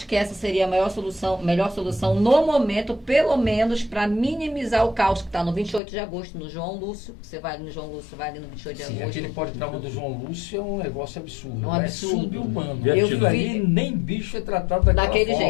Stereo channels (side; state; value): right; drops out; at 5.8 s